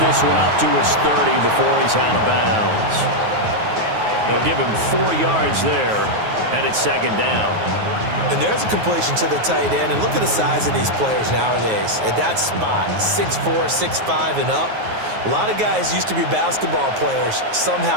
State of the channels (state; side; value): late; left; 9.4 ms